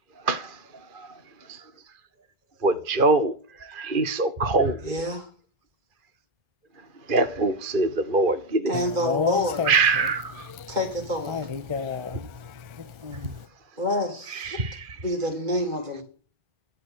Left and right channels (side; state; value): left; late; 1.4 ms